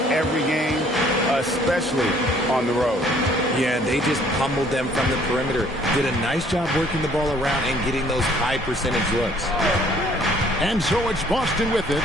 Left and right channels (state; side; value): normal; both; correlation 0.59